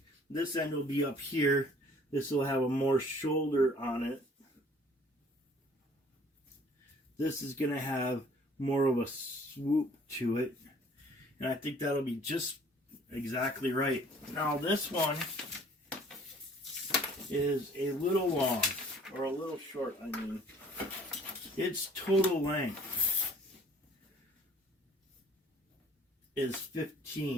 This end will be up here. This will have a more shoulder on it. This is going to have more of a swoop to it. And I think that'll be just exactly right. Now this one is a little long, or a little short, I mean. Its total length is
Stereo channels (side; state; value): both; normal; correlation 0.54